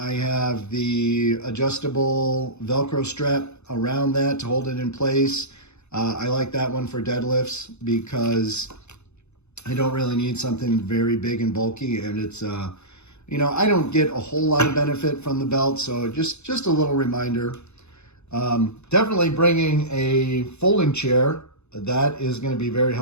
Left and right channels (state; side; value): late; right; 0.81 ms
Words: have the adjustable Velcro strap around that to hold it in place. I like that one for deadlifts because I don't really need something very big and bulky, and it's I don't get a whole lot of benefit from the belt, so just a little reminder. Definitely bringing a folding chair. That is going to be very